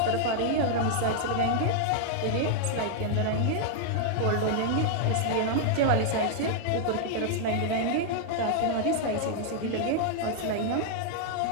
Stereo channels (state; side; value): different; both; correlation 0.00